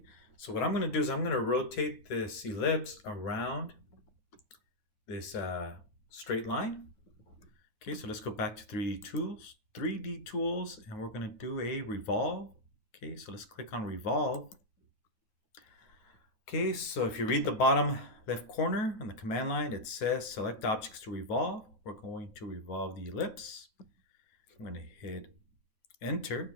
So what I'm going to do is I'm going to rotate this ellipse around this straight line. Okay, so let's go back to 3D Tools, and we're going to do a revolve. Okay, so let's click on revolve. Okay, so if you read the bottom left corner on the command line, it says select objects to revolve. We're going to revolve the ellipse. I'm going to hit enter.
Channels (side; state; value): right; late; 9.5 ms